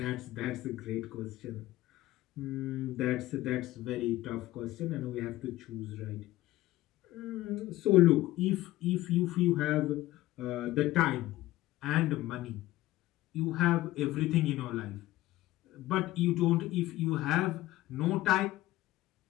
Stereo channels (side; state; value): right; quieter; 16.5 dB